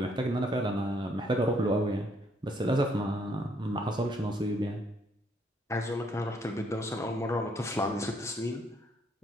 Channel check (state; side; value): normal; both; correlation 0.68